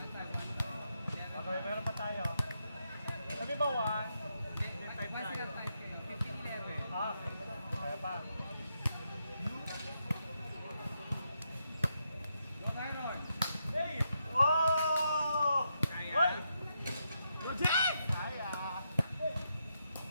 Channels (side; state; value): both; inverted; correlation -0.82